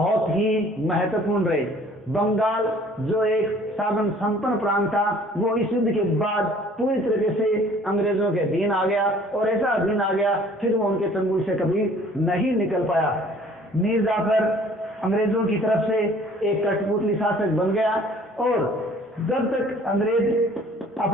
ही महत्वपूर्ण रहे। बंगाल जो एक साधन संपन्न प्रांत था, वो इस युद्ध के बाद पूरी तरीके से अंग्रेजों के अधीन आ गया और ऐसा अधीन आ गया फिर वो उनके चंगुल से कभी नहीं निकल पाया। मीर जाफर अंग्रेजों की तरफ से एक कठपुतली शासक बन गया और जब तक अंग्रेज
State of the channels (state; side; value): normal; both; correlation 0.54